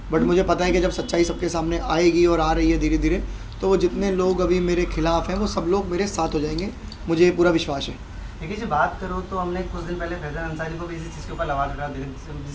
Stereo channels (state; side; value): identical; both; correlation 1.00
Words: बट मुझे पता है कि जब सच्चाई सबके सामने आएगी और आ रही है धीरे धीरे, तो वो जितने लोग अभी मेरे खिलाफ हैं वो सब लोग मेरे साथ हो जाएंगे। मुझे ये पूरा विश्वास है। देखिए जी, बात करो तो हमने कुछ दिन पहले फैज़ल अंसारी को भी इसी चीज़ के ऊपर आवाज़ उठा दी,